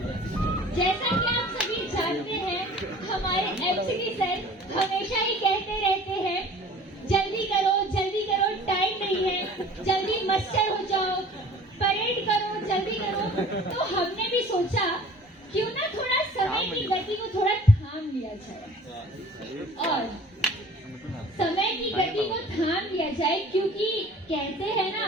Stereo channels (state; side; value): normal; both; correlation 0.47